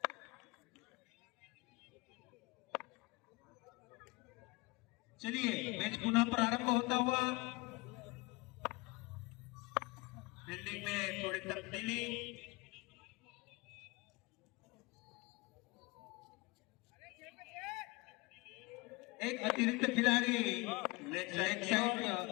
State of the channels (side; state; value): right; quieter; 24.6 dB